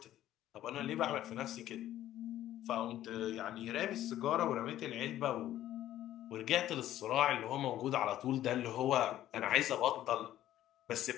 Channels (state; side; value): quieter; right; 13.0 dB